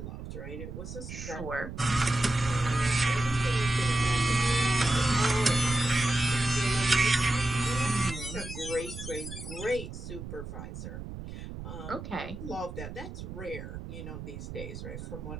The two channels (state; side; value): noise; right; rumble, 10 dB below the sound